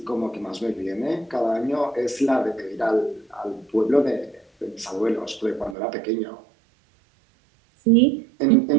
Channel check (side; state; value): left; drops out; at 5.8 s